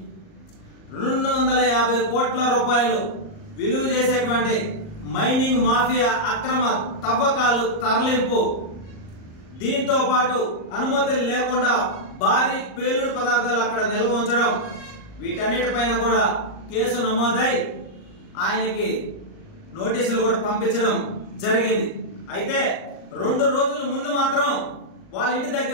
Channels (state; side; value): late; right; 38 ms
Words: 250 కోట్ల రూపాయలు విలువ చేసేటువంటి మైనింగ్ మాఫియా అక్రమ తవ్వకాలు తరలింపు, దీంతో పాటు అనుమతులు లేకుండా భారీ పేలుడు పదార్థాలు అక్కడ నిల్వ ఉంచడం, వీటన్నిటిపైన కూడా కేసు నమోదై ఆయనకి నోటీసులు కూడా పంపించడం జరిగింది. అయితే 2 రోజుల ముందు మాత్రం వాళ్ళ ఇంటి